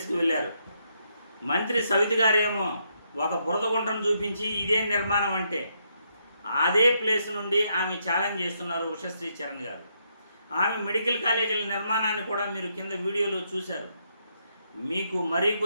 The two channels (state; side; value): inverted; both; correlation -0.77